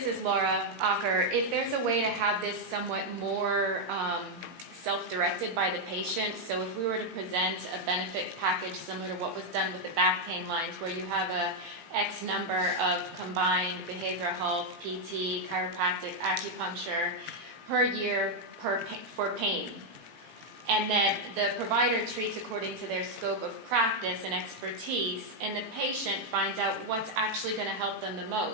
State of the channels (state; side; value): late; left; 18 ms